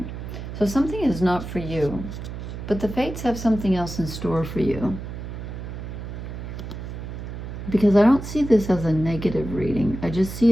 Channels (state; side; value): noise; right; hum, 8 dB below the sound